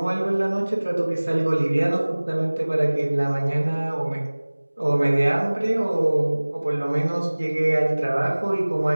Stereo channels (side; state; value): both; inverted; correlation -1.00